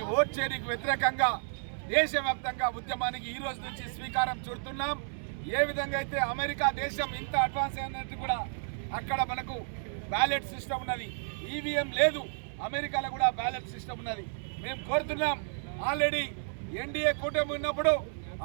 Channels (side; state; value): left; silent; 57 dB below the other